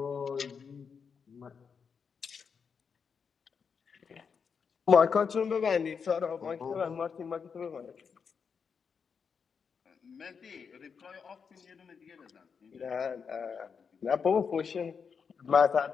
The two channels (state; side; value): quieter; right; 6.1 dB